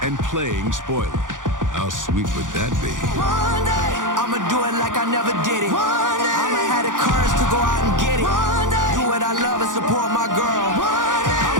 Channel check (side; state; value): left; late; 0.88 ms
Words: and playing spoiler. How sweet would that be? One day, I'ma do it like I never did it. One day, I'ma have the courage to go out and get it. One day, do what I love and support my girl. One day,